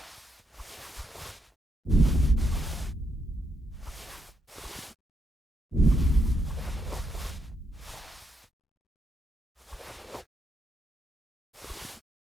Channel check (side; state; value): both; normal; correlation 0.78